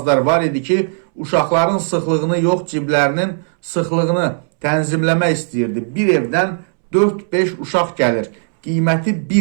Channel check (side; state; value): left; silent; 67 dB below the other